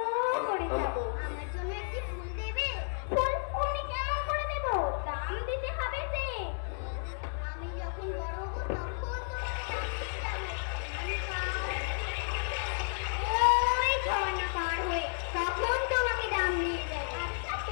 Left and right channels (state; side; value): silent; right; digital silence